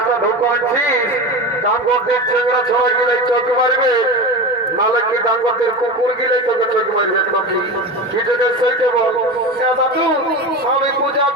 ঢুকাচ্ছিস ডাঙ্গরদের চেংড়া ছড়া গেলে চোখ মারবে নালে কি ডাঙ্গরদের কুকুর গেলে তোকে চোখ মারবে নাকি কি যদি সেইটা বল দাদু আমি পূজা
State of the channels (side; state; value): both; normal; correlation 0.26